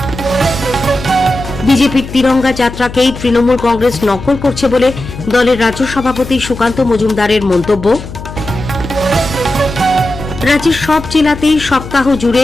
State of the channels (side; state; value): left; noise; hum, 12 dB below the sound